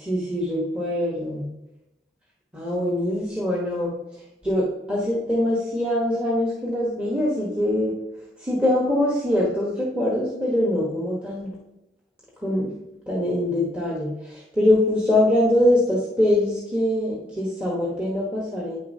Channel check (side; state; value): both; normal; correlation 0.70